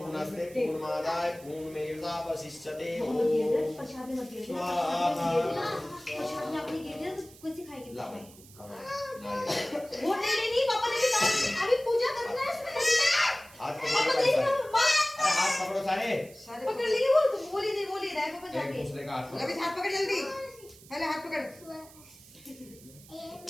पूर्णमादाय पूर्णमेवावशिष्यते ओम प्रसाद मत दे। स्वाहा। प्रसाद में आपने गिर दिया तो कैसे खाएंगे? ला भाई वो नहीं पापा ने कहा अभी पूजा करना है इसमें। हाथ पापा पकड़ो देख सारे। लो मां अरे हाथ पकड़ो सारे। सारे पकड़ लिए वो तो बोल ही नहीं बोल ही रहा है पापा एक जाके। दूसरे का हाथ अभी पकड़ो। हाथ पकड़ जल्दी। पहले हाथ पकड़। स्वाहा।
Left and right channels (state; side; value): noise; right; hiss, 22 dB below the sound